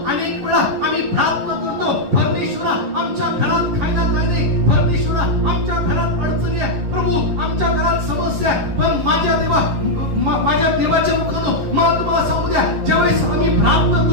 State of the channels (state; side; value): late; left; 11 ms